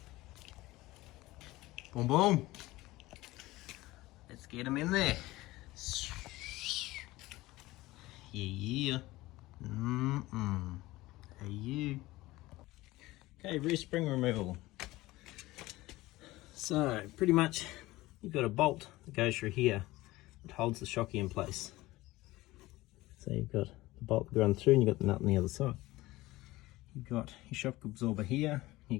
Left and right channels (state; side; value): quieter; right; 18.7 dB